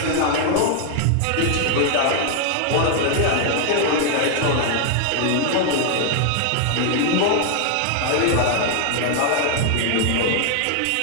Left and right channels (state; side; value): different; both; correlation 0.00